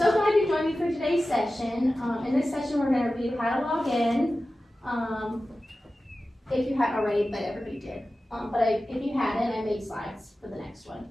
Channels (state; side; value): normal; both; correlation 0.95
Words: glad you joined me for today's session. In this session, we're going to review how to log in. If you haven't already, but everybody did. If you hadn't, I made slides for the next one.